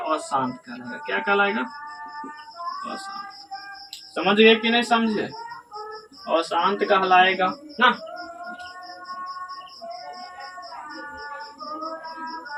कहलाएगा। क्या कहलाएगा, अशांत। समझ गए कि नहीं समझे, अशांत कहलाएगा ना।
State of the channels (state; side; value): identical; both; correlation 1.00